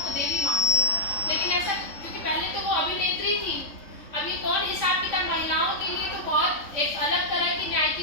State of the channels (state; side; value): late; right; 3.6 ms